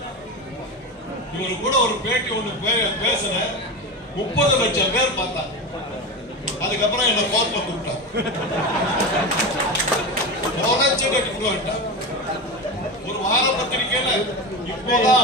இவரு கூட ஒரு பேட்டி ஒண்ணு பேசுற 30 லட்சம் பேர் பார்த்தாங்க. அதுக்கப்புறம் என்ன கோர்ட்ல கூப்பிட்டாங்க, ஒரு வார பத்திரிகையில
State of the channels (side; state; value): both; normal; correlation 0.22